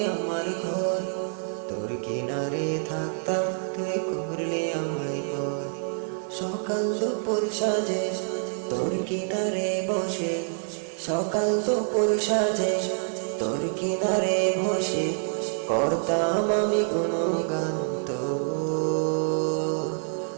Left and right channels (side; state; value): left; silent; digital silence